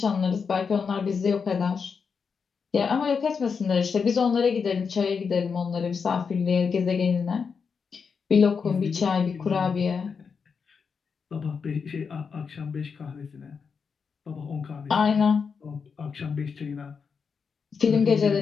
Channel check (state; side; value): quieter; right; 5.8 dB